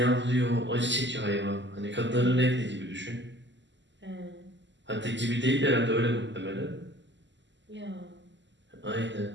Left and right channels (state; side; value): late; left; 0.53 ms